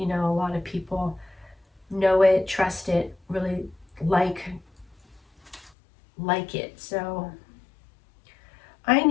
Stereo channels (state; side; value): drops out; right; at 5.7 s